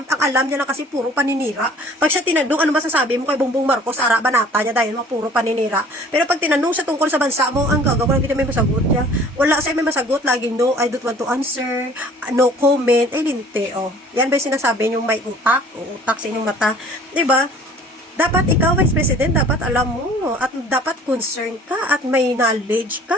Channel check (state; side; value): normal; both; correlation 0.51